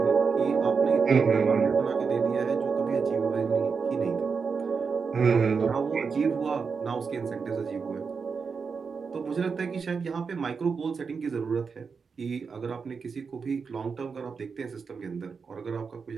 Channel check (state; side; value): quieter; left; 5.4 dB